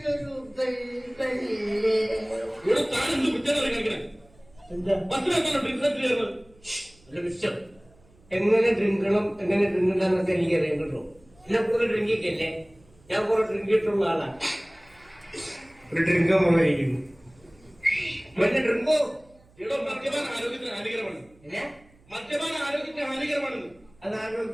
എങ്ങനെ ഡ്രിങ്കണം എങ്ങനെ ഡ്രിങ്കണ്ടെന്നൊക്കെ എനിക്കറിയാം കേട്ടോ. എന്നെ പോലെ ഡ്രിങ്കിക്കല്ലേ, ഞാൻ കുറെ ഡ്രിങ്കിട്ടുള്ള ആളാണ്. ഒരു ഡ്രിങ്ക് പോയിരിക്കുന്നു. മറ്റേ ഡ്രിങ്കോ മദ്യപാന ആരോഗ്യത്തിന് ഹാനികരമാണ്. മദ്യപാന ആരോഗ്യത്തിന് ഹാനികരമാണെന്ന്. അത്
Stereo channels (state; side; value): noise; right; hum, 29 dB below the sound